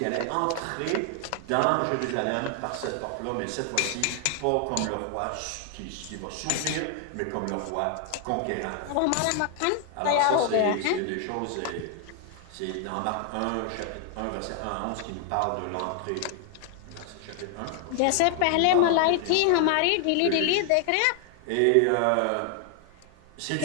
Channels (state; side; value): different; both; correlation 0.00